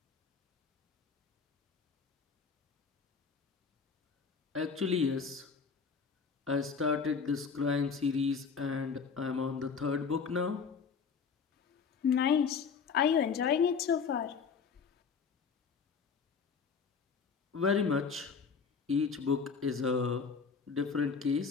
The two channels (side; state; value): right; quieter; 5.7 dB